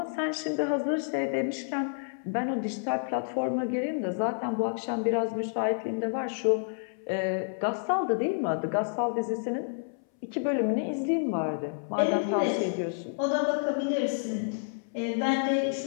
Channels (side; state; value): right; silent; 58 dB below the other